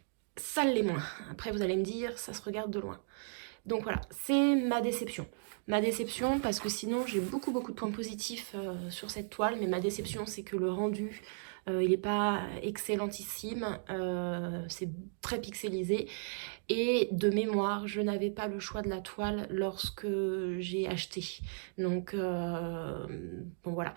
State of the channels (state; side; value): silent; left; digital silence